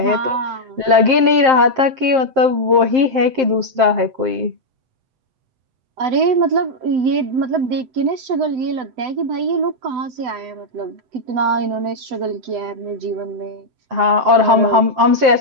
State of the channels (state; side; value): late; left; 7.6 ms